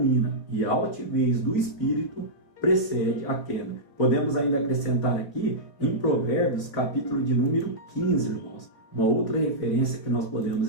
e a altivez do espírito precede a queda. Podemos ainda acrescentar aqui, em Provérbios, capítulo de número 15, irmãos, uma outra referência que nós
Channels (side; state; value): right; late; 3.8 ms